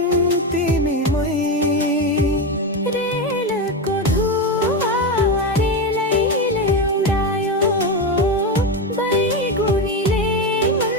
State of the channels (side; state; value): both; normal; correlation 0.14